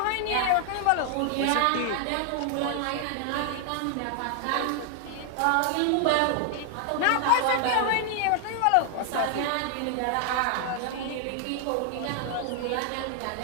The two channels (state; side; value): different; both; correlation 0.00